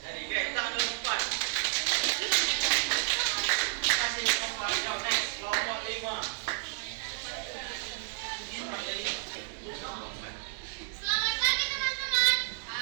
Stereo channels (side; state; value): left; silent; 57 dB below the other